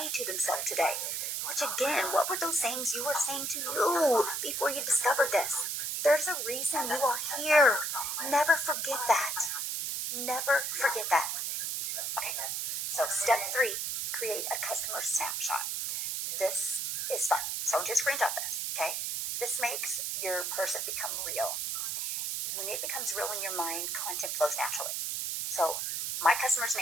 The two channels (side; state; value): right; noise; hiss, 1 dB below the sound